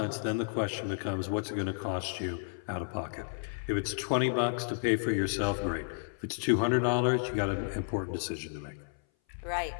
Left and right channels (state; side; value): silent; right; 56 dB below the other